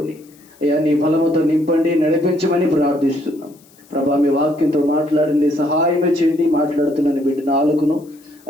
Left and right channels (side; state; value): left; noise; hiss, 29 dB below the sound